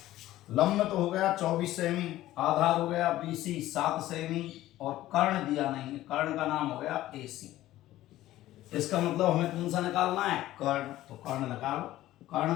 लंब तो हो गया 24 सेमी, आधार हो गया BC 7 सेमी, और कर्ण दिया नहीं है, कर्ण का नाम हो गया AC। इसका मतलब हमें कौन सा निकालना है कर्ण, तो कर्ण निकालो।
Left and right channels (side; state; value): right; quieter; 15.1 dB